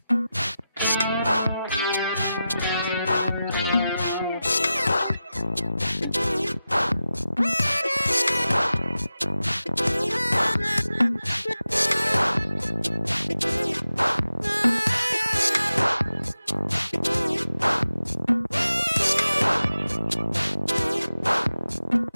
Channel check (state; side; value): inverted; both; correlation -0.92